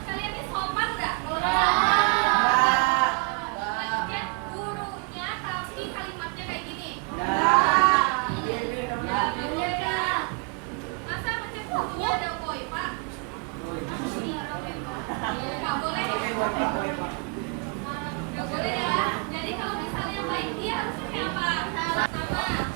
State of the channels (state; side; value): quieter; left; 32.0 dB